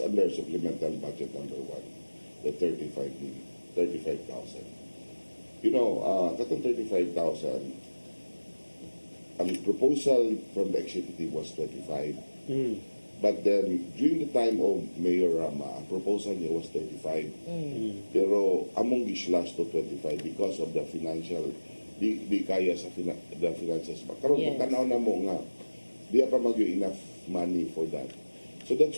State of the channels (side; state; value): both; inverted; correlation -1.00